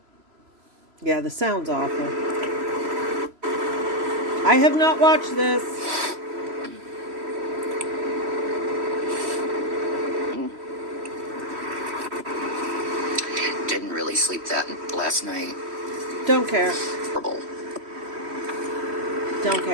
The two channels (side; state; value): left; late; 3.0 ms